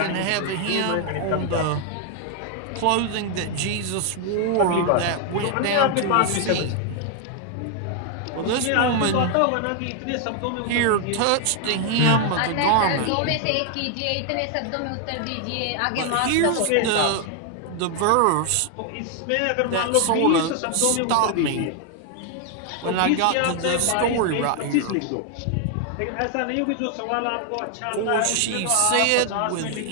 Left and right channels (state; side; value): different; both; correlation 0.00